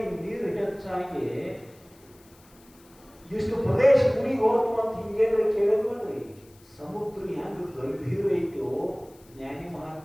ನೀರು ಹೆಚ್ಚಾಗಿ ಇಷ್ಟು ಪ್ರದೇಶ ಮುನಿಗೆ ಹೋತು ಅಂತ ಹಿಂಗೇನು ಕೇಳಿದ್ ನೋಡ್ರಿ. ಸಮುದ್ರ ಹೆಂಗ ಗಂಭೀರ ಐತೋ ಜ್ಞಾನಿ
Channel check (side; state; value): left; noise; hiss, 28 dB below the sound